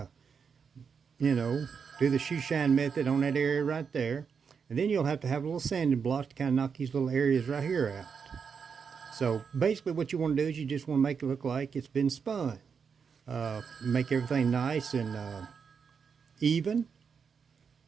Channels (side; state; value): left; quieter; 6.2 dB